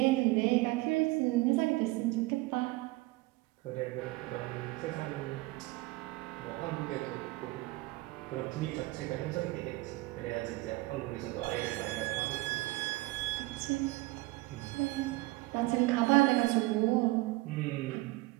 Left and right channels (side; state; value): left; quieter; 21.3 dB